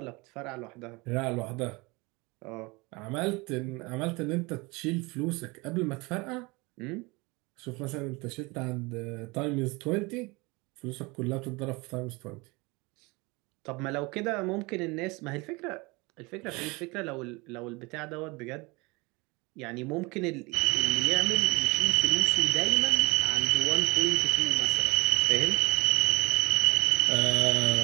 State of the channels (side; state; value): left; quieter; 25.5 dB